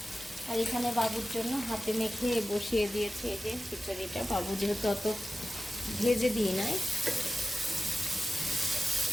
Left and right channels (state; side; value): normal; both; correlation 0.94